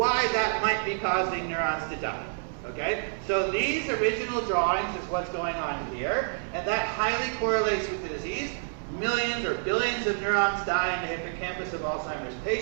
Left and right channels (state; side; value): silent; left; digital silence